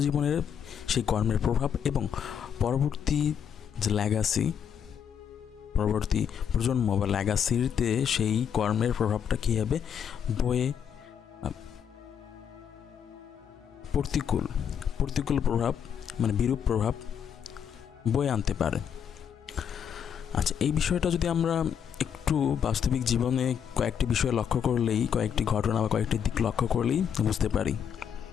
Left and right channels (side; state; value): right; quieter; 8.1 dB